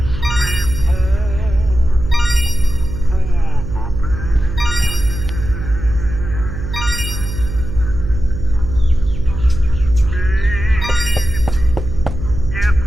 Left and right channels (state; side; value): noise; right; hum, 7 dB below the sound